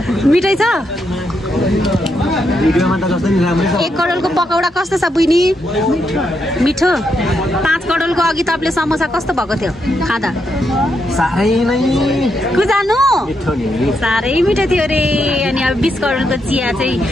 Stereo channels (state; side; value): normal; both; correlation 0.81